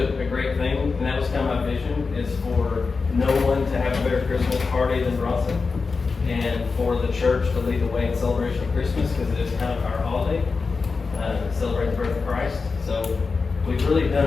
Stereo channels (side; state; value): right; quieter; 4.5 dB